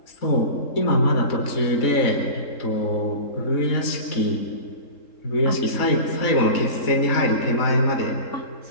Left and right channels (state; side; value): late; right; 3.8 ms